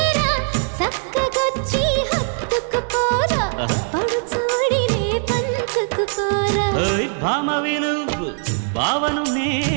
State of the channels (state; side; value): silent; left; 55 dB below the other